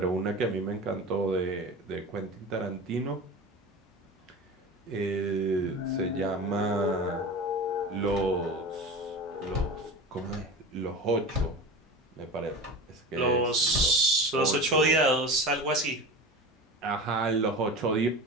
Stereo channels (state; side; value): normal; both; correlation 0.31